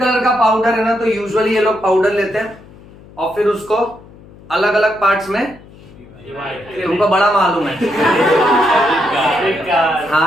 का पाउडर है ना, तो यूजुअली ये लोग पाउडर लेते हैं और फिर उसको अलग अलग पार्ट्स में, उनको बड़ा मालूम है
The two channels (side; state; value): left; noise; hum, 22 dB below the sound